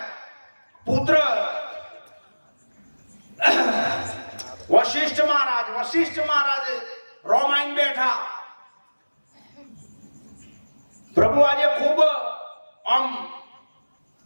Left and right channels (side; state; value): both; inverted; correlation -1.00